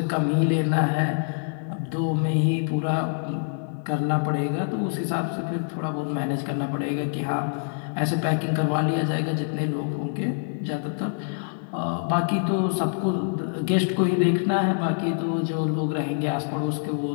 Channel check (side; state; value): right; silent; digital silence